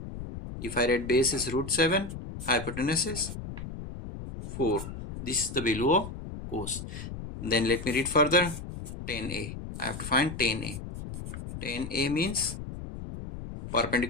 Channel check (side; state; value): left; noise; rumble, 9 dB below the sound